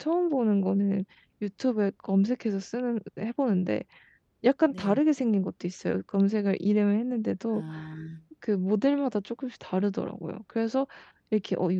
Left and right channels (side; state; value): both; identical; correlation 1.00